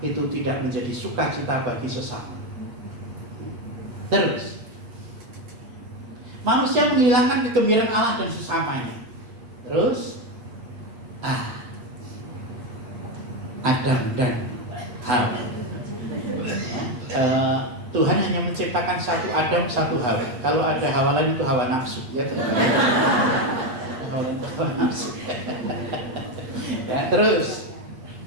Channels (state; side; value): late; left; 8.5 ms